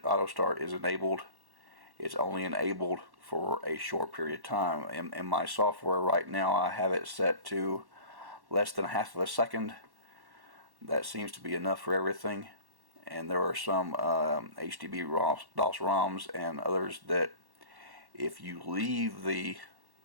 auto start is enabled, it's only enabled for a short period of time. In my software right now, I have it set to less than half of a second. That seems to be enough for everything. And there are some HDB DOS ROMs and others that if you leave the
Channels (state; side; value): late; left; 1.1 ms